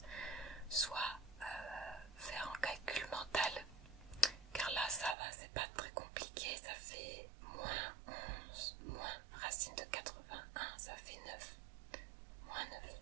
soit faire un calcul mental, car là ça va, c'est pas très compliqué. Ça fait moins 11 moins racine de 81, ça fait 9, moins 9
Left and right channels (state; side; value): drops out; left; at 5.2 s